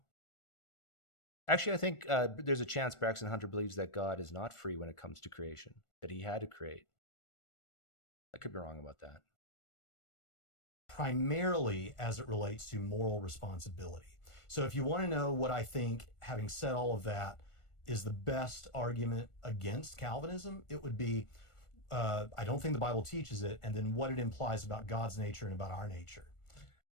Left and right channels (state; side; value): late; right; 1.4 ms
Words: Actually, I think there's a chance Braxton Hunter believes that God is not free when it comes to creation, that he had to create. I could be wrong about that. Primarily as it relates to moral responsibility. So if you want to know what I think, having said all of that, is the best argument against Calvinism, it would be, I don't think the Bible teaches it, and then what it implies about God's nature and about our nature.